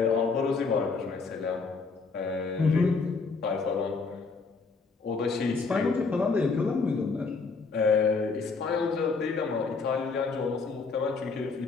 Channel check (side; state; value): right; quieter; 4.5 dB